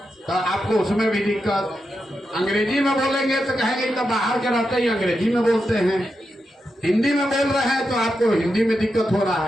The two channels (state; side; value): normal; both; correlation 0.87